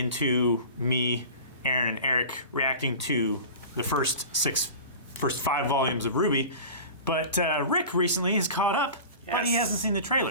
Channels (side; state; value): both; inverted; correlation -0.36